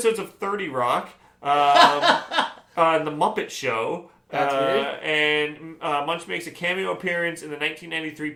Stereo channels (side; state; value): both; identical; correlation 1.00